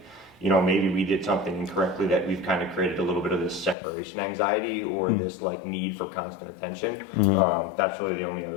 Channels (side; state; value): right; drops out; at 3.8 s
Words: maybe we did something incorrectly that we've kind of created a little bit of this separation anxiety or this like need for constant attention. That's really the only